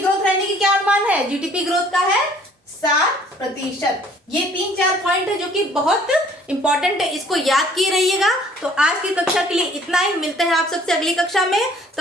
रहने की क्या अनुमान है, जीडीपी ग्रोथ का है 7%। ये 3-4 पॉइंट है जो कि बहुत इंपॉर्टेंट है, इसको याद किए रहिएगा। तो आज की कक्षा के लिए इतना ही, मिलते हैं आप सबसे अगली कक्षा में।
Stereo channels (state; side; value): normal; both; correlation 0.57